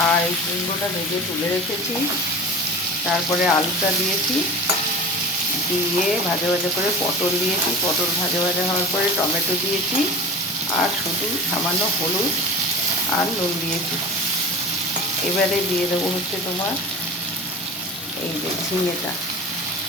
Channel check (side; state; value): both; normal; correlation 0.34